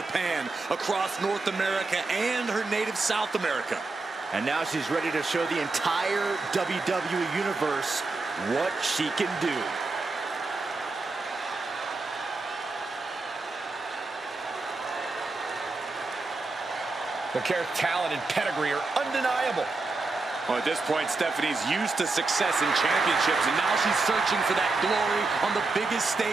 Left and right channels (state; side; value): quieter; left; 3.6 dB